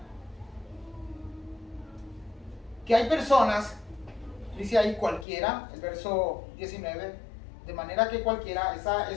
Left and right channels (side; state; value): right; drops out; at 5.2 s